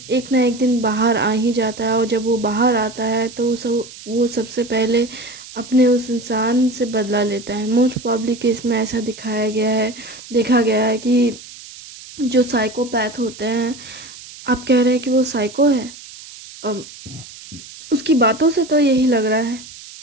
एक ना एक दिन बाहर आ ही जाता है, और जब वो बाहर आता है तो वो सबसे पहले अपने उस इंसान से बदला लेता है। मोस्ट प्रॉब्ली केस में ऐसा देखा गया है कि जो साइकोपैथ होते हैं, आप कह रहे हैं कि वो साइको है, अम, उसकी बातों से तो यही लग रहा है।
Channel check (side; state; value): right; noise; hiss, 17 dB below the sound